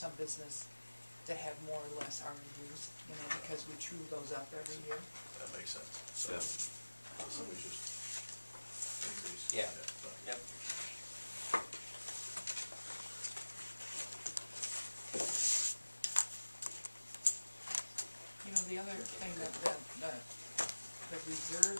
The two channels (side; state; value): both; inverted; correlation -1.00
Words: business that had more or less RMUs, you know, because we true those up every year. That makes sense. So, so we just increase. Yeah. Yep. You know, the other thing that the reserve